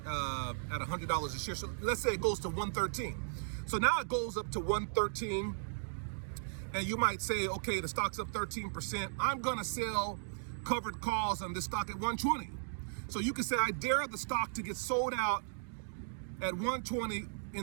$100 a share. So let's say it goes to 113. So now it goes up to 113, and you might say, okay, the stock's up 13%. I'm gonna sell covered calls on this stock at 120. So you can say, I dare the stock to get sold out at 120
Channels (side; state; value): left; silent; digital silence